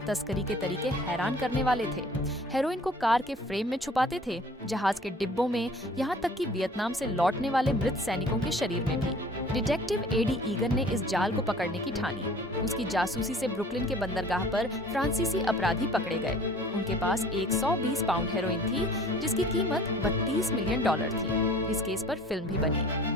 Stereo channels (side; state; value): both; normal; correlation 0.49